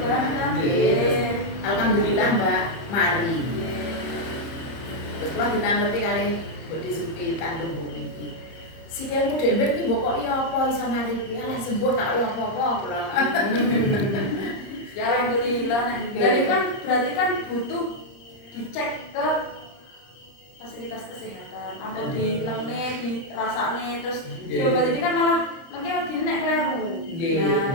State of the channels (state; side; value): late; right; 30 ms